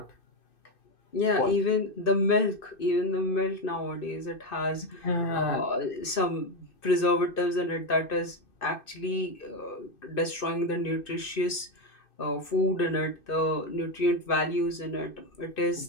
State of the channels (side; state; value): right; late; 2.6 ms